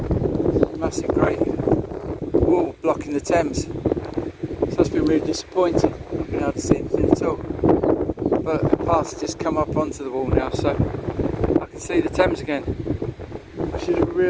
There's a massive great wall blocking the Thames, so it's been really disappointing, not being able to see anything at all. But a path's just come up onto the wall now, so I can see the Thames again, which is a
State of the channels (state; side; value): identical; both; correlation 1.00